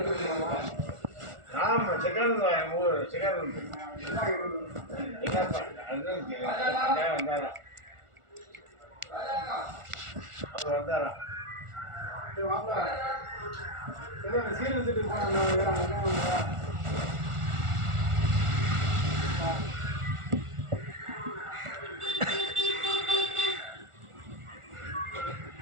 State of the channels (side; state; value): left; late; 1.4 ms